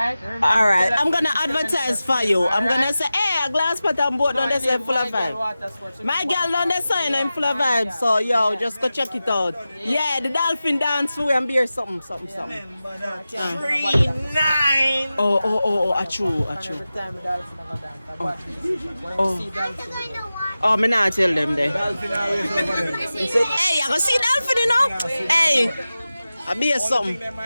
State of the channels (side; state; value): both; inverted; correlation -0.95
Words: Alright, I'm gonna advertise for you. I'm gonna say, hey, a glass pot and boat on the side full of vibes. My girl on the side I'm full of vibes, so yo, just go check it out. Yeah, the dolphin dance for and beer something. 3-9. Oh, a true. Every time the dolphin have a dance, watch this. When you see dolphin, Oh, me not tell them there. Hey, I go see dolphin, you know? Hey, I be a something.